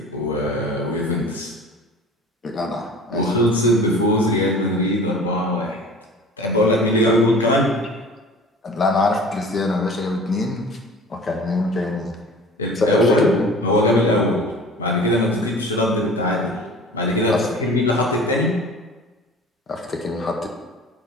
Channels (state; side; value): normal; both; correlation 0.43